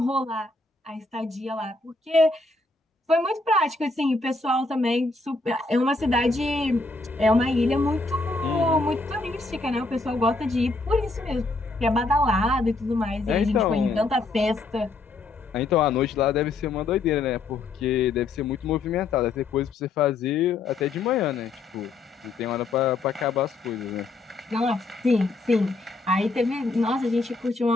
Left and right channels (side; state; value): right; quieter; 3.4 dB